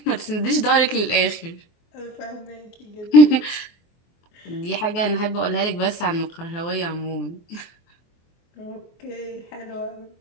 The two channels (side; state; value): right; late; 24 ms